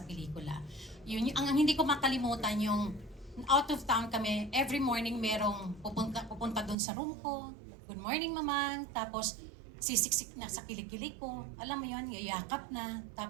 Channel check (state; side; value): drops out; left; at 6.8 s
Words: pelikula. Yun, ang hindi ko makalimutan yung out of town kami, every morning merong pupunta doon sa room ko. Good morning, mamang. Tapos, sisiksik na sa kilikili ko. Alam mo yun, yayakap na.